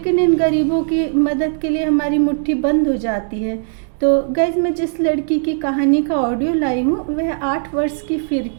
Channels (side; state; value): left; silent; digital silence